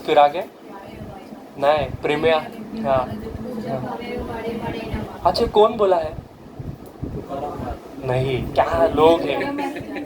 फिर आगे नहीं प्रेमिया। हाँ, अच्छा कौन बोला है? नहीं, क्या लोग हैं,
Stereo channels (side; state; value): both; identical; correlation 1.00